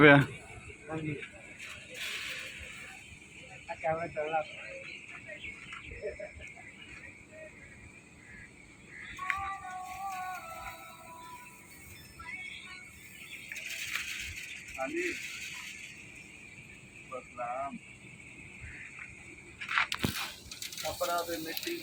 ਹਾਂਜੀ ਆ ਕੈਮਰਾ ਚੱਲਦਾ ਹਾਂਜੀ ਬਸਲਾਮ ਕਪੜਾ ਤੇ ਮਿੱਟੀ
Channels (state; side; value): identical; both; correlation 1.00